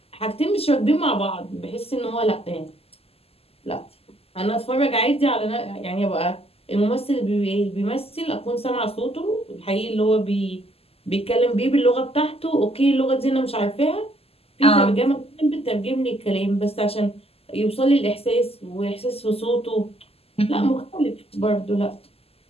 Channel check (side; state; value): right; late; 0.29 ms